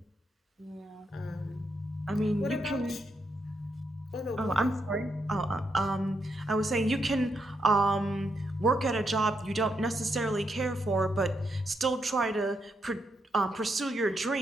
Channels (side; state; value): both; normal; correlation 0.80